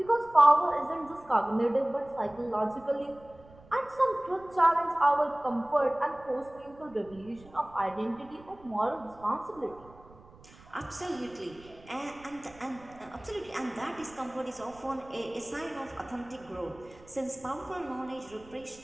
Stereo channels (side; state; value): right; noise; rumble, 23 dB below the sound